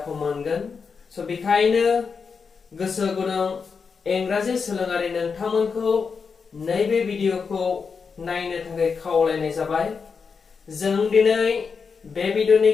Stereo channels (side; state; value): right; quieter; 5.5 dB